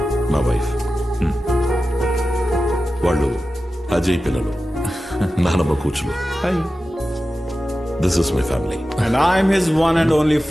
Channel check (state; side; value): normal; both; correlation 0.93